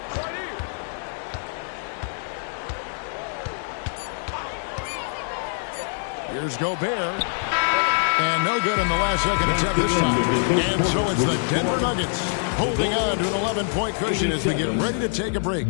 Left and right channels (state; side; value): silent; right; digital silence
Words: Here's Gobert. And no good in the last second attempt this time. And so it's the Denver Nuggets holding on to an 11-point cushion as we get ready to take a break.